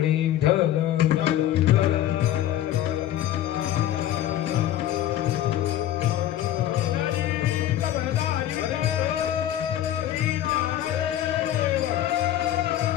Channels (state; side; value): quieter; right; 12.4 dB